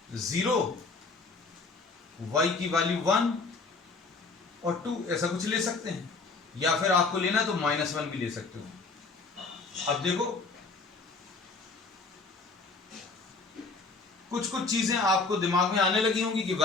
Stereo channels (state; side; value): quieter; right; 4.0 dB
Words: 0, y की वैल्यू 1 और 2 ऐसा कुछ ले सकते हैं, या फिर आपको लेना तो -1 भी ले सकते हो। अब देखो कुछ कुछ चीजें आपको दिमाग में आने लगी होंगी कि